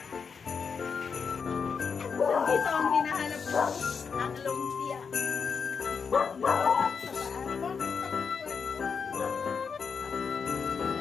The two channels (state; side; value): quieter; right; 5.9 dB